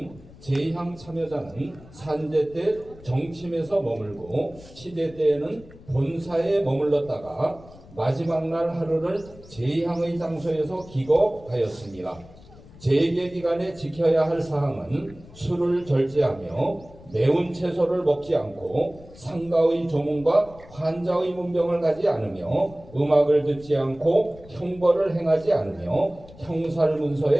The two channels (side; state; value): left; noise; rumble, 21 dB below the sound